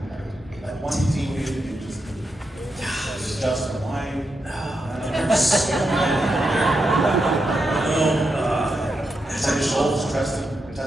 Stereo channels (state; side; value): normal; both; correlation 0.85